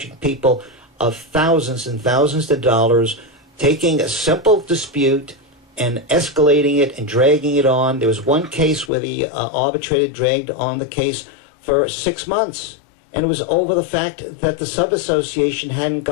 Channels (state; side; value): drops out; right; at 8.9 s